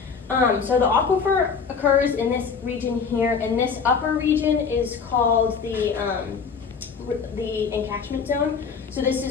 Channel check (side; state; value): right; quieter; 5.8 dB